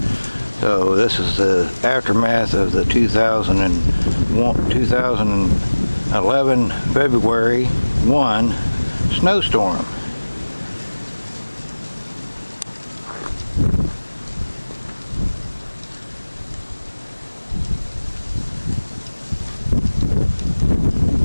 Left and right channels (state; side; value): inverted; both; correlation -1.00